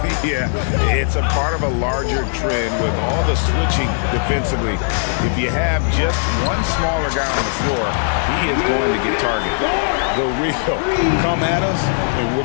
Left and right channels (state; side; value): silent; right; digital silence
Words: Yeah, it's a part of a larger trend with all the switching defensively. If you have just one smaller guy on the floor, he is going to get targeted. The real come at us, and